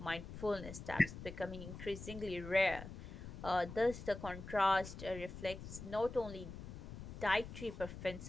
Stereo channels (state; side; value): noise; left; rumble, 10 dB below the sound